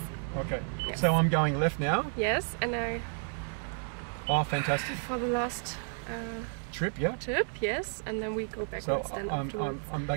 Okay. Yes. So I'm going left now? Yes, and I... Oh, fantastic. For the last... Trip, yeah? Trip, yes, and then we go backwards then afterwards. I'm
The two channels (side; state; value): left; silent; 57 dB below the other